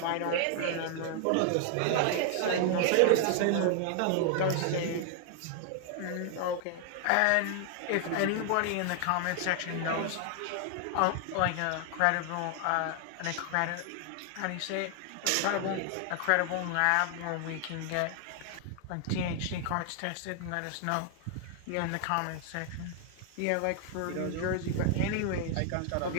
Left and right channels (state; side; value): different; both; correlation 0.00